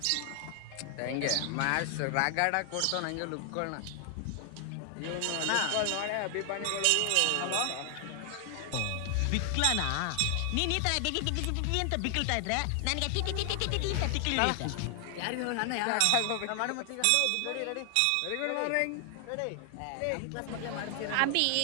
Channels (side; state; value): both; different; correlation 0.00